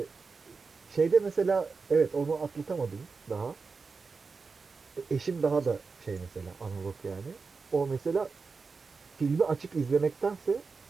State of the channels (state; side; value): quieter; left; 4.6 dB